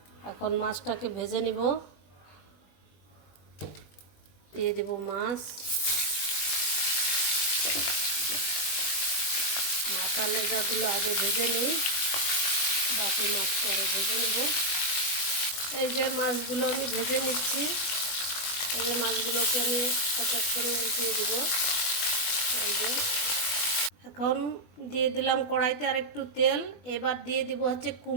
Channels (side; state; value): right; late; 21 ms